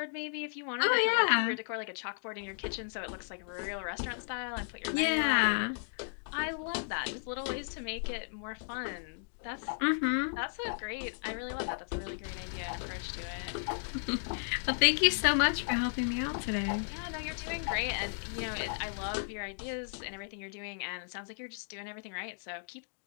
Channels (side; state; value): right; silent; digital silence